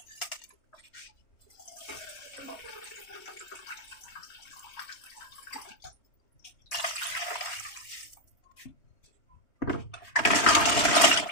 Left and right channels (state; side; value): late; right; 3.2 ms